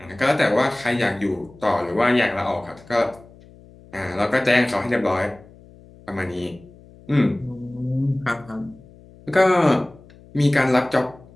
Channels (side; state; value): left; noise; hum, 23 dB below the sound